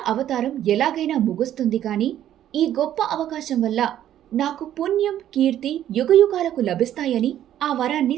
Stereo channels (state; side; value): quieter; left; 11.5 dB